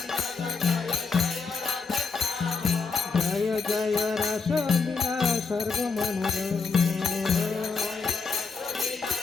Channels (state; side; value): quieter; right; 4.9 dB